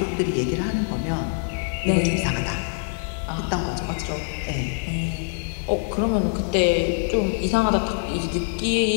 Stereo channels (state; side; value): silent; right; digital silence